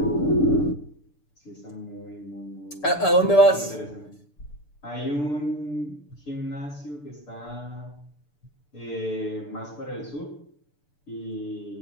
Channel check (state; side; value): late; right; 6.8 ms